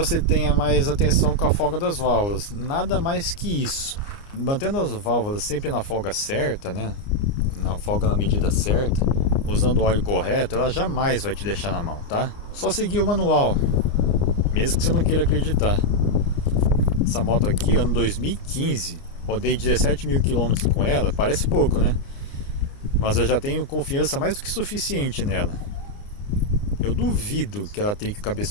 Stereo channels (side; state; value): right; late; 29 ms